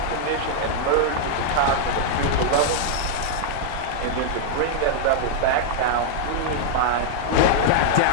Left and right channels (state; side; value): different; both; correlation -0.01